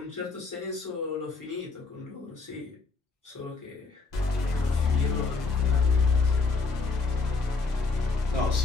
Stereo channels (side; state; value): right; quieter; 4.1 dB